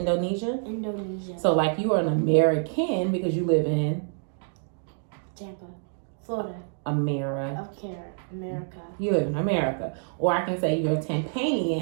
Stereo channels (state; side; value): silent; left; 60 dB below the other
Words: Indonesia. So you are an American because you live in Tampa, Florida. America. America. You live in America. Or I can say you're a